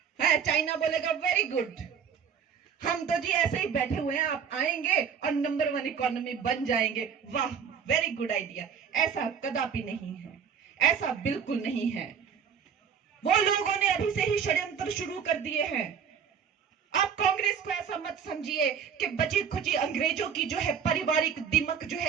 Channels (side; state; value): left; quieter; 7.3 dB